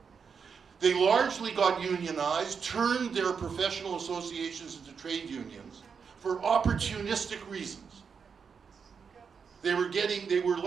They largely got unionized, turned their professional associations into trade unions for opportunistic reasons. They were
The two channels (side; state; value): left; quieter; 6.1 dB